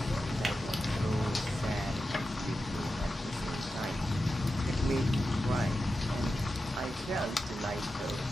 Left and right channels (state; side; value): normal; both; correlation 0.91